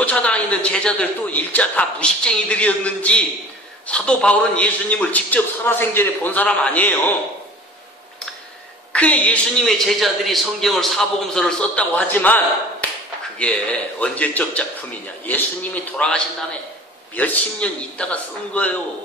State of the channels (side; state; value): both; normal; correlation 0.44